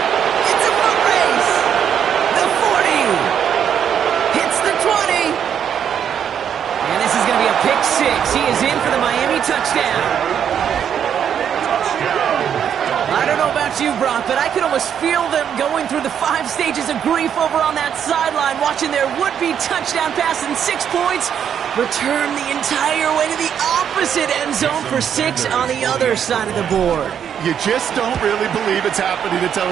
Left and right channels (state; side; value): quieter; left; 8.6 dB